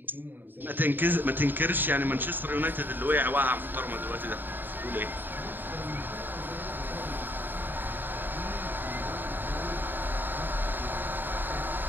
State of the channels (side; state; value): left; late; 0.092 ms